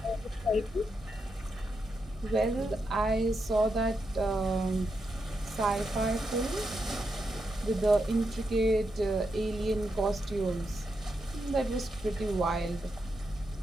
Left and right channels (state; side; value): normal; both; correlation 0.84